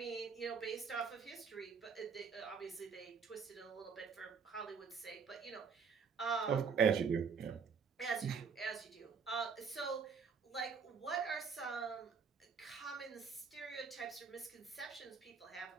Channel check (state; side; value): quieter; left; 6.0 dB